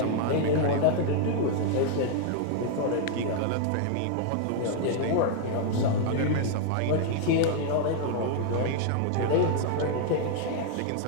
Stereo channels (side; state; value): both; different; correlation 0.00